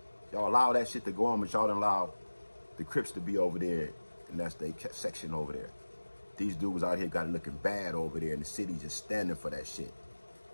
Y'all allow that shit to go on, but y'all don't allow the Crips to be over there, and that's their section over there. These dudes out here got it looking bad over there, and the city just standing for that shit.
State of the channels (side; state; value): both; inverted; correlation -1.00